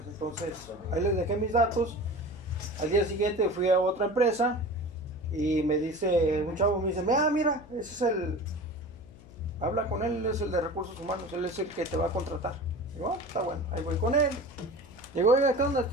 Entonces, ahí les dejé mis datos. Al día siguiente fui a otra empresa y me dice, un chavo me dice, mira, ese es habla con él, él es el de recursos humanos, él es el que te va a contratar. Digo, está bueno, ahí voy con él. Digo, oiga, ¿qué onda?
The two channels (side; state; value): left; noise; hum, 21 dB below the sound